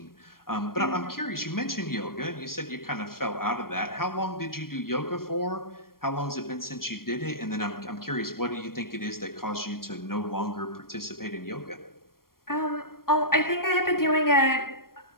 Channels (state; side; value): late; right; 0.93 ms